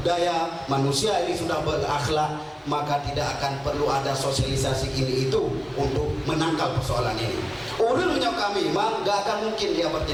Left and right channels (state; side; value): identical; both; correlation 1.00